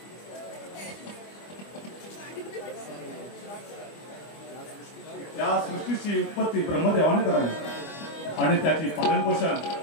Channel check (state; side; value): late; right; 25 ms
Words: या सृष्टीची उत्पत्ती ब्रह्मदेवाने करावी आणि त्याची पालनपोषण